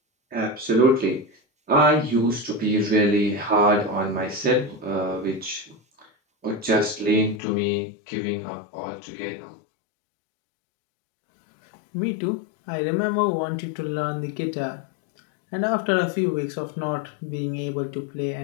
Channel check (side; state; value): right; drops out; at 7.4 s